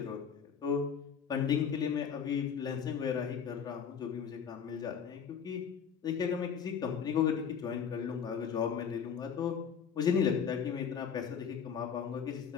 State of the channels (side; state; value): right; quieter; 7.2 dB